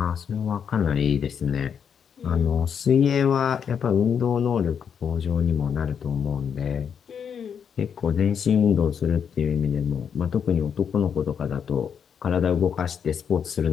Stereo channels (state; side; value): quieter; right; 7.5 dB